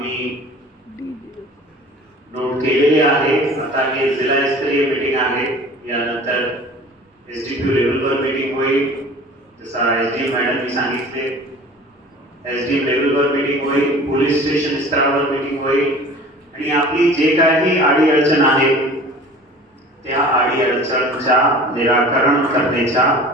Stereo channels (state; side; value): normal; both; correlation 0.43